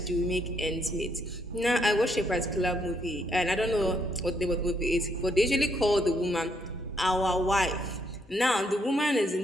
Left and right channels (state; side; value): normal; both; correlation 0.73